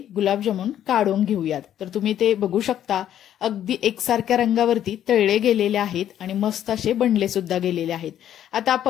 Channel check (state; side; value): quieter; right; 10.8 dB